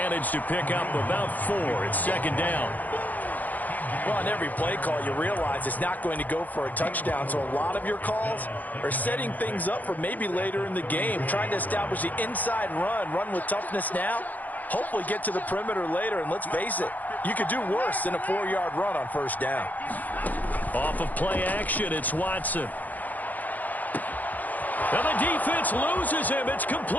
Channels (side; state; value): right; late; 0.081 ms